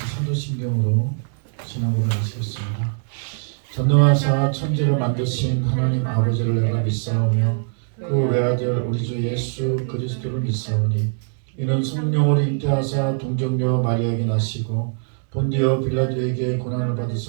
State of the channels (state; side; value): silent; left; digital silence